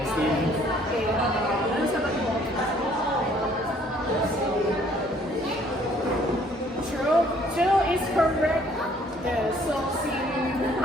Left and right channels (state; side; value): normal; both; correlation 0.61